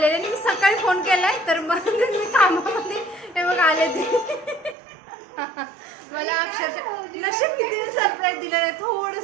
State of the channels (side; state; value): left; drops out; at 4.8 s